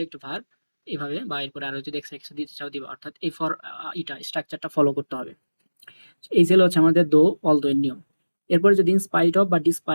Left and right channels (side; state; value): both; inverted; correlation -1.00